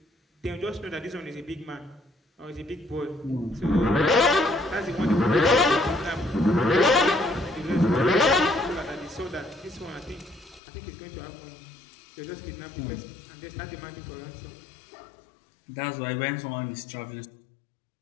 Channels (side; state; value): right; drops out; at 10.6 s